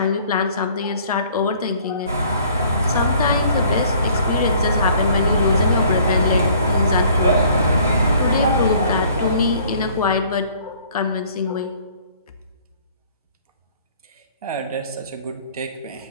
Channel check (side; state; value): both; inverted; correlation -0.56